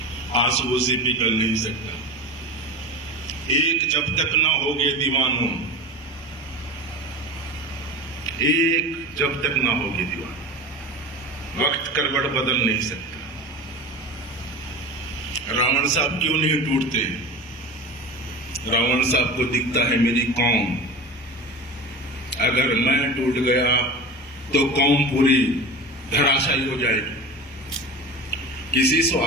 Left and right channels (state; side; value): normal; both; correlation 0.30